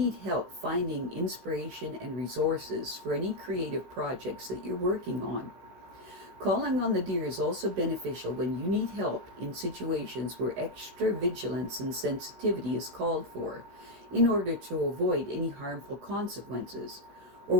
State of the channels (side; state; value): left; late; 16 ms